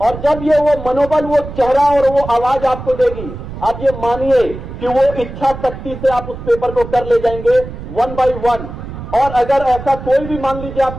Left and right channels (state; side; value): noise; right; rumble, 11 dB below the sound